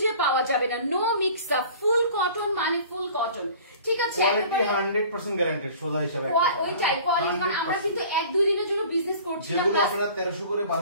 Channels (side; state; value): both; inverted; correlation -0.46